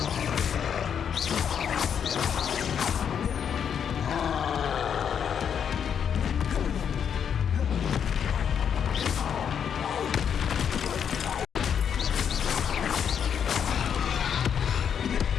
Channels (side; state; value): right; quieter; 7.9 dB